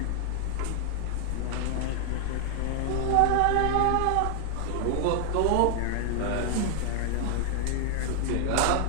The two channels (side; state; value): both; different; correlation 0.00